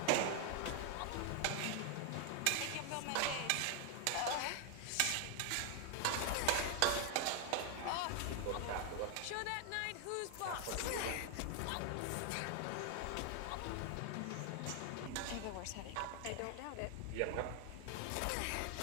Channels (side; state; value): both; different; correlation 0.00